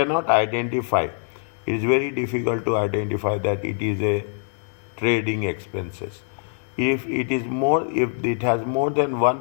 identify. It is very difficult to identify that it is a trading expenses. If it has more than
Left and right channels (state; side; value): silent; right; digital silence